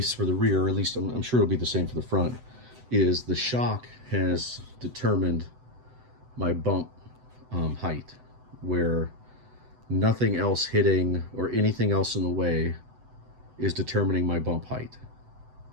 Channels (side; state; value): left; late; 7.9 ms